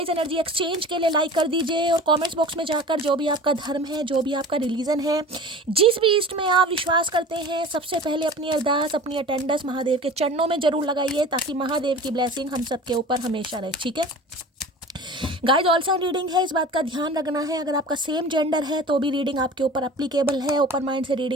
एनर्जी एक्सचेंज के लिए लाइक कर दीजिए और कमेंट्स बॉक्स में जाकर जो भी आपका धर्म है, जो भी आपका रिलीजन है, जिस भी ईस्ट में आप विश्वास करते हैं, सबसे पहले अपनी अरदास, अपनी अटेंडेंस महादेव के चरणों में जरूर लगाइए, ताकि महादेव की ब्लेसिंग हम सबके ऊपर हमेशा रहे. ठीक है गाइज, ऑल साइन रीडिंग है, इस बात का ध्यान रखना है. अगर आपका सेम जेंडर है तो भी रीडिंग आपके ऊपर एप्लीकेबल है. ओपन माइंड से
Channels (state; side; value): normal; both; correlation 0.38